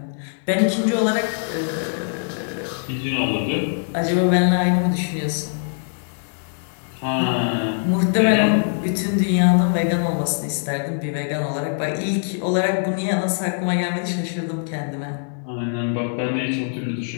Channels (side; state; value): right; silent; 64 dB below the other